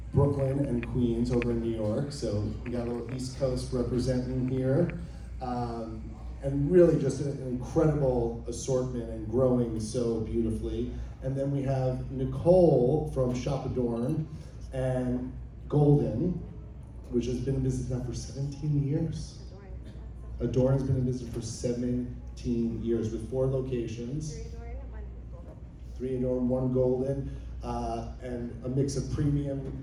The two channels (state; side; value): identical; both; correlation 1.00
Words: Brooklyn and Queens over in New York, so we got a little East Coast representing here. And really just an incredible assortment and growing so beautifully. And then we have Nicole from Shop Adorn and Golden, which has been in business now for 17 years. Adorn has been in business for 17 years with 4 locations. 3 Adorn, 1 Golden, and a mix of